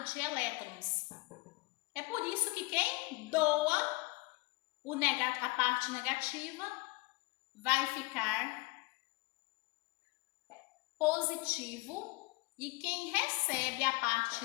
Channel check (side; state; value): right; quieter; 24.2 dB